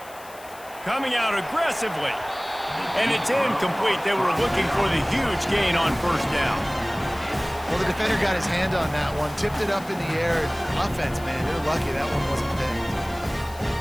Coming out aggressively. And it's incomplete. They were looking for the huge gain on first down. Well, the defender got his hand on that one, tipped it up in the air. Offense, man, they're lucky that one wasn't picked.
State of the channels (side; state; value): left; noise; hiss, 20 dB below the sound